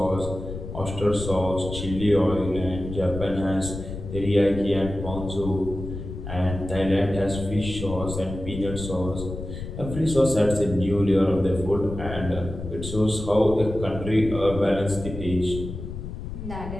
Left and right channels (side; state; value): left; noise; rumble, 8 dB below the sound